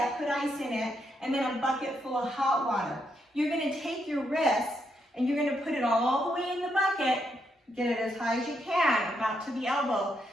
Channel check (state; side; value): normal; both; correlation 0.79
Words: put ice in it, and then a bucket full of hot water. You're going to take your wrist and you're going to put it all the way in the bucket, get it as high as you can, about to the elbow.